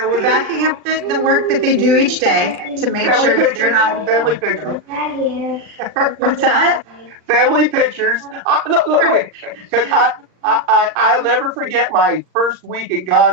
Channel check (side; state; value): left; late; 39 ms